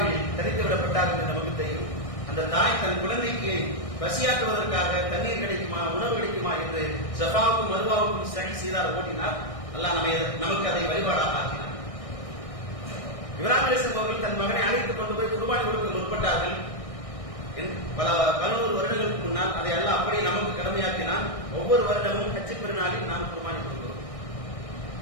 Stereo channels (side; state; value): right; late; 1.6 ms